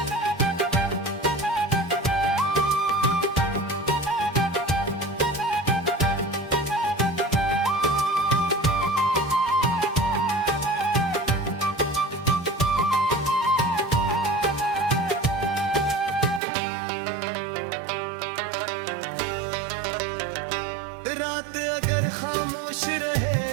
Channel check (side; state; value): left; drops out; at 16.4 s